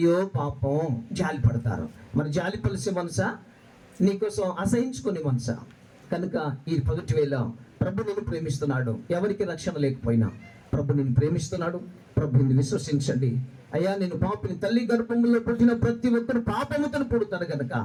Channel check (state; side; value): identical; both; correlation 1.00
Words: పాపం జాలి పడతారు. మరి జాలి పలిసే మనసా, నీకోసం అసహించుకునే మనసా? కనుక ఈ పగటి వేళ ప్రభు నిన్ను ప్రేమిస్తున్నాడు. ఎవరికి రక్షణ లేకపోయినా ప్రభు నిన్ను ప్రేమిస్తున్నాడు. ప్రభుని విశ్వసించండి. అయ్యా, నేను పాపని, తల్లి గర్భంలో పుట్టిన ప్రతి ఒక్కరు పాపముతో పుడతారు కనుక